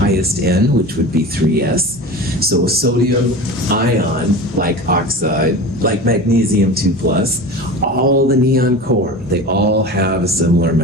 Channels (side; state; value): both; normal; correlation 0.32